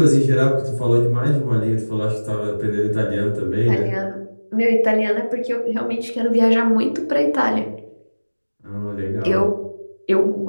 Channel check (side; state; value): both; inverted; correlation -1.00